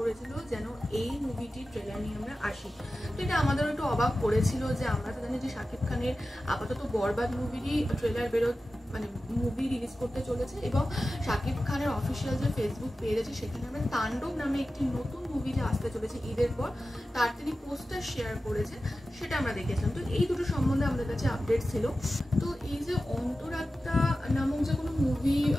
যেন এই মুভিটির ট্রেলার নিয়ে আমরা আসি। তো এটা আমাদের একটু অবাক করেছিল যে আমরা তো জানি যে শাকিব খানের আপাতত বরবাদ মুভিরই ট্রেলার মুভি রিলিজ করতে চলেছে এবং শাকিব খানের অফিসিয়াল যে ফেসবুক পেজ আছে সেখানে আমরা তাণ্ডব নামে একটি নতুন মুভি যে আসতে চলেছে ঈদের পর তার তিনি পোস্টার শেয়ার করেছেন, সেটা আমরা দেখেছিলাম। তো এই দুটো সম্বন্ধে আমাদের কাছে আপডেট ছিল। তো এই যে অন্তরাত্মা নামক যে কোনো মুভি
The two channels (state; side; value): normal; both; correlation 0.94